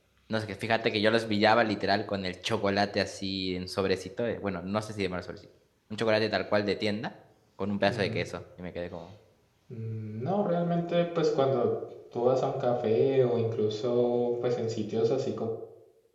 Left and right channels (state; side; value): identical; both; correlation 1.00